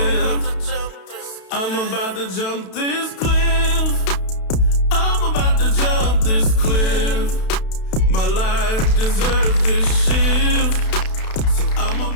I'm about to jump this cliff. I'm about to jump this cliff. My life deserves this shift. So I'm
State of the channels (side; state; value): right; late; 32 ms